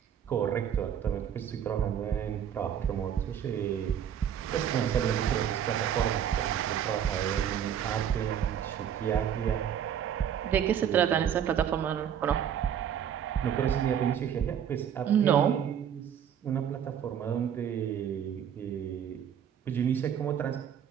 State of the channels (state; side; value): quieter; left; 9.0 dB